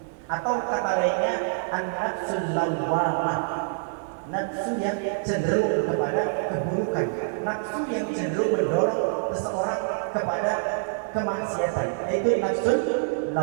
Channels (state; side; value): silent; left; digital silence